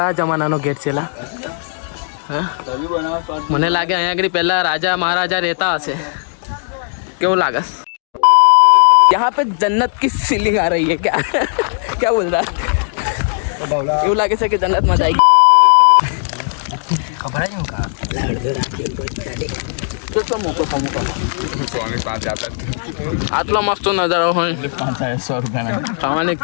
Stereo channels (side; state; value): right; silent; digital silence